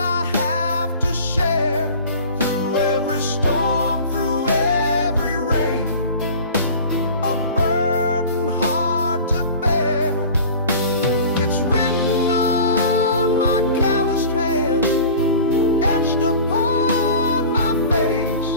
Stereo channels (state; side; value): inverted; both; correlation -0.40